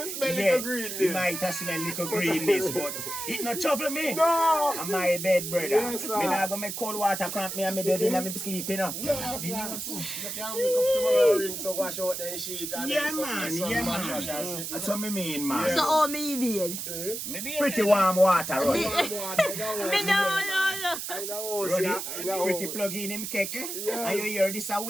smell little greenness. You might have smell little greenness, but it not trouble me. No. On my bed, brother. Yes, sir. Me not go make cold water cramp me and me dead in and me sleep, you know. No, sir. You can't wake up tomorrow ring so wash out the sheet and man. So me mean, man. So how me beard? Pretty warm water, Ruddy. I know. Ruddy, pretty plug in him keke, and you hear this a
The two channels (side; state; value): right; noise; hiss, 5 dB below the sound